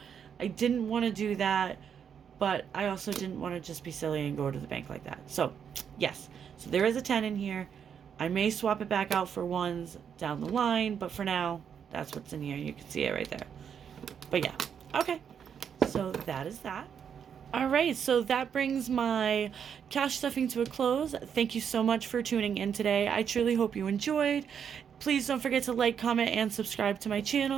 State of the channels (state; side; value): quieter; left; 7.7 dB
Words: I didn't want to do that, but I also didn't want to just be silly and go to the bank like that. So yes, so there is a 10 in here. I may swap it back out for ones down the line, but for now, that's what's in here. You can see it right there. But yeah, okay. So that is that. All right, so that brings my cash stuffing to a close. Thank you so much for tuning in today. I truly hope you enjoyed. Please don't forget to like, comment, and subscribe to my